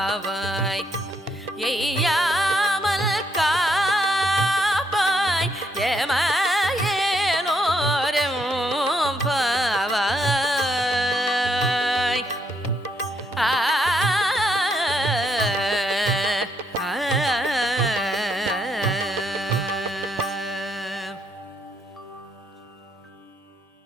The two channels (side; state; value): both; normal; correlation 0.74